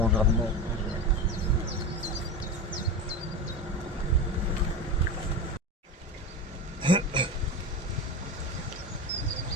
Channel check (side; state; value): both; normal; correlation 0.24